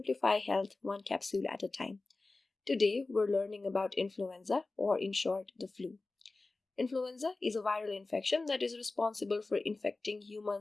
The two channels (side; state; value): right; quieter; 3.4 dB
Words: health one capsule at a time. Today, we're learning about influenza, or in short, the flu. Influenza is a viral infection that is responsible for infecting